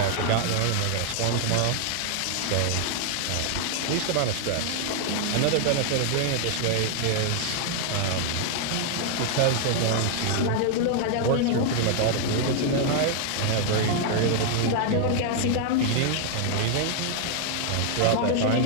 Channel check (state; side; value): different; both; correlation 0.00